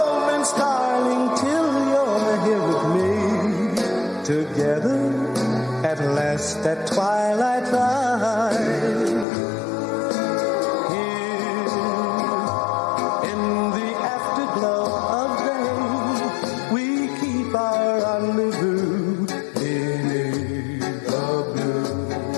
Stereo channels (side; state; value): right; drops out; at 9.2 s